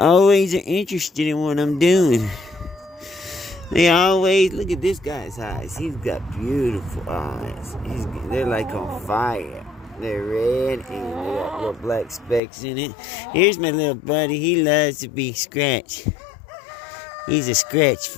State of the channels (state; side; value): drops out; right; at 12.4 s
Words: are interested in what I'm doing. They always, look at this guy's eyes. He's got beautiful eyes. They're like on fire. They're red and they got little black specks in it. Here's my little buddy. He loves to be scratched. He's a scratch